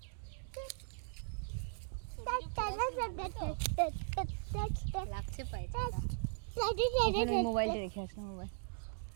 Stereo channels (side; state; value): left; silent; digital silence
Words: লাগছে পায়ে। মোবাইলটা রেখে আসলাম। মোবাইল